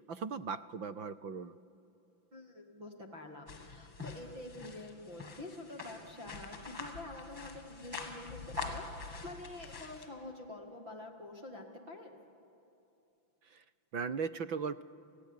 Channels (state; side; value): late; left; 5.9 ms